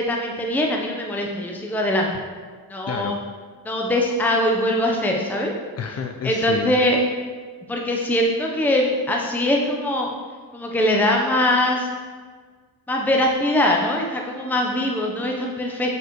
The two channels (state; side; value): normal; both; correlation 0.34